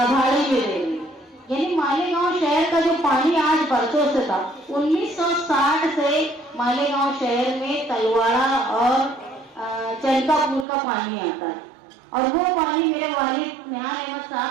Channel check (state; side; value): drops out; left; at 10.7 s